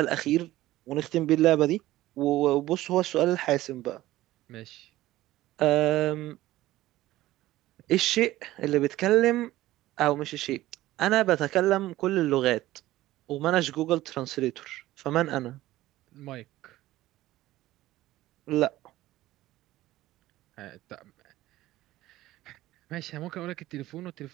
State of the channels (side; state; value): left; quieter; 16.0 dB